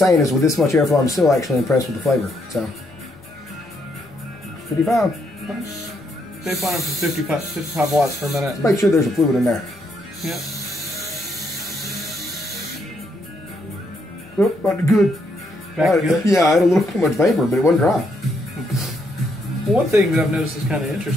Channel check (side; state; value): both; normal; correlation 0.75